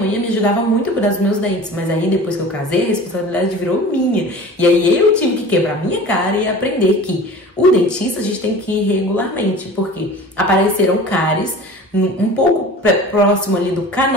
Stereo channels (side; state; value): both; normal; correlation 0.39